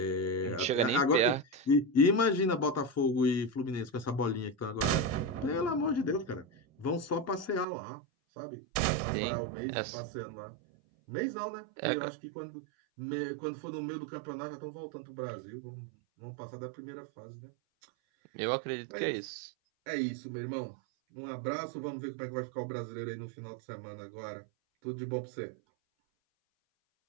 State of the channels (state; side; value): drops out; left; at 7.7 s